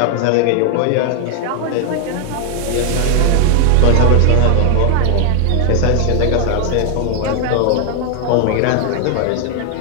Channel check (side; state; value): both; different; correlation 0.00